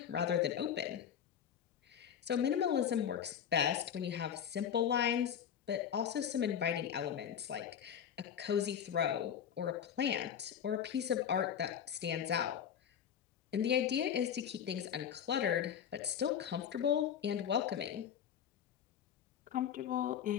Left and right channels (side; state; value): right; quieter; 8.7 dB